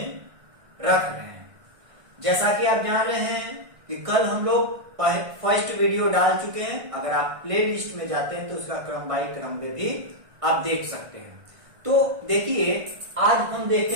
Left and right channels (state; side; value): late; left; 1.6 ms